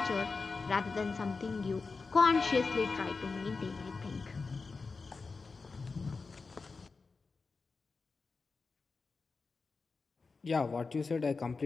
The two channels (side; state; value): right; quieter; 4.3 dB